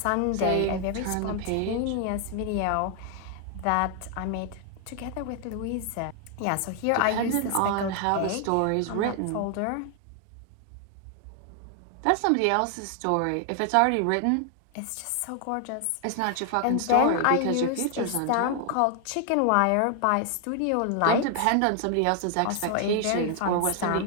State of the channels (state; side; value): different; both; correlation 0.00